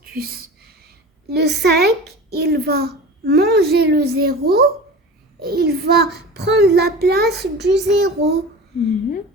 Le 5, il va manger le 0 et il va prendre la place du 0.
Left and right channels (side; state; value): both; normal; correlation 0.34